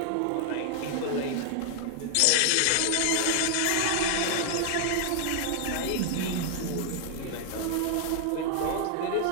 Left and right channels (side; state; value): both; different; correlation 0.00